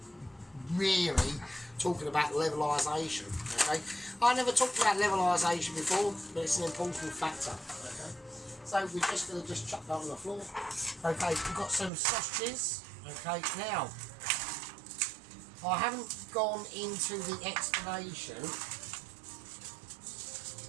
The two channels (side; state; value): left; drops out; at 11.9 s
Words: really talking about levelisation. Okay, I never talked about levelisation before, but it's an important factor. Okay, so we're just going to chuck that on the floor. Okay, we've got some sausages. Okay, now I haven't gone into the explanation